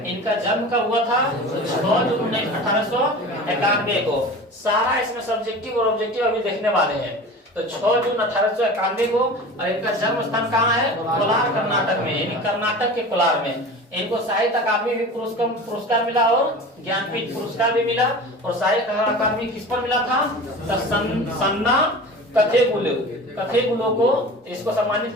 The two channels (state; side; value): normal; both; correlation 0.35